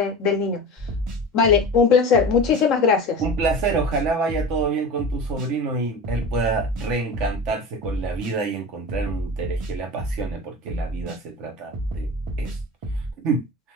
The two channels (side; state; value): both; normal; correlation 0.31